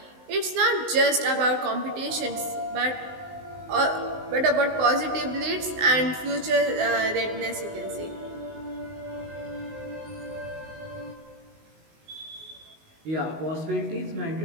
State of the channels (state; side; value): late; left; 19 ms